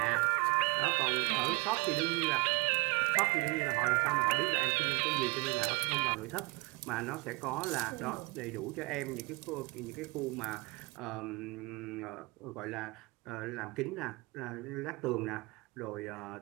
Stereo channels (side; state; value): left; quieter; 25.2 dB